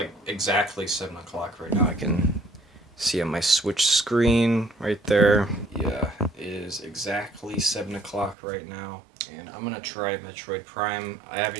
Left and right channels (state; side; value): drops out; left; at 8.3 s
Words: exactly 7 o'clock right now. I can See on my Switch screen right there. Yeah, it is exactly 7 o'clock right now. And I'm gonna try Metroid Prime. I